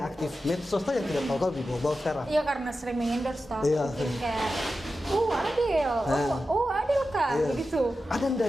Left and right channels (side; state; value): both; normal; correlation 0.92